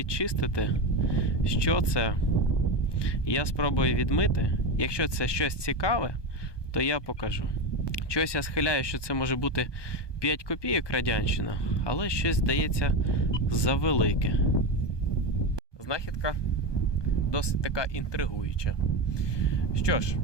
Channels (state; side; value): late; right; 1.2 ms